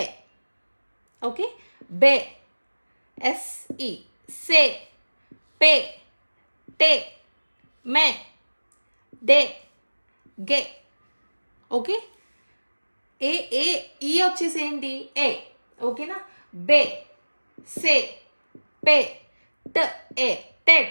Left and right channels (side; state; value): both; inverted; correlation -1.00